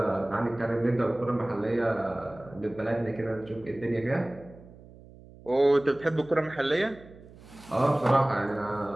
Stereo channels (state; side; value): noise; right; hum, 21 dB below the sound